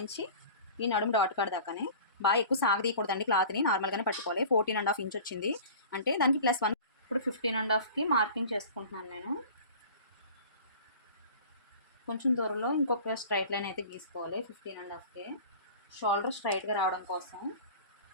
ఈ నడుము డాట్ కాడ దాకానే బాగా ఎక్కువ సాగదీయకూడదండి. క్లాత్ని నార్మల్గానే పట్టుకోవాలి. 14.5 ఇంచ్ వచ్చింది అంటే దానికి +1. ఇప్పుడు 15.5కి మార్కింగ్ చేసుకుంటున్నాను నేను. కొంచెం దూరంలో ఇంకొక స్ట్రైట్ లైన్ అయితే గీసుకోవాలి 15.5కి. షోల్డర్ స్ట్రైట్గా రావడం కోసం.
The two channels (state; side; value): inverted; both; correlation -0.41